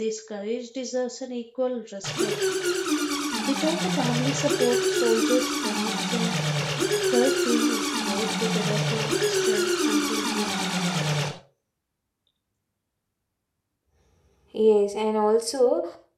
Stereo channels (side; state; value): both; identical; correlation 1.00